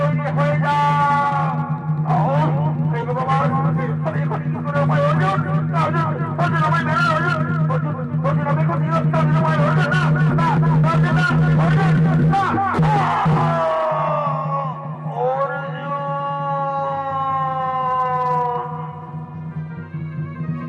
হয়ে যা। আমি এখন কি করে উপায়? অর্জুন অর্জুন আমায় মেরে অর্জুন, অর্জুন আমি এখন নিরস্ত্র নিরুপায়। অর্জুন না, অর্জুন না, অর্জুন না।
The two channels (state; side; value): identical; both; correlation 1.00